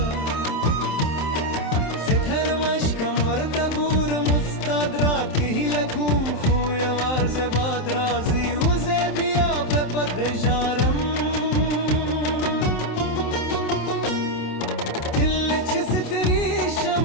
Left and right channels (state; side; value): late; right; 27 ms